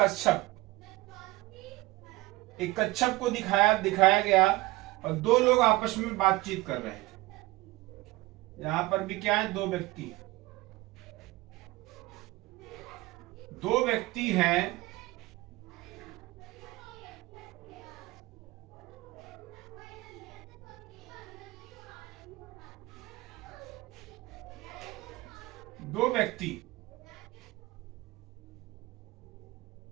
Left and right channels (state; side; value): quieter; left; 20.3 dB